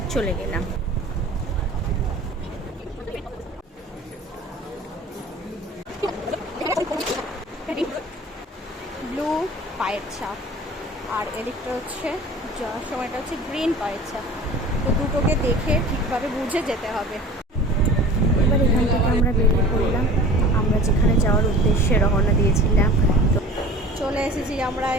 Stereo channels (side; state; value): both; normal; correlation 0.42